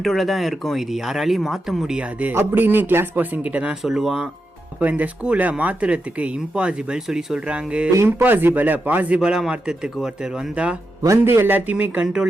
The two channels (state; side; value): normal; both; correlation 0.87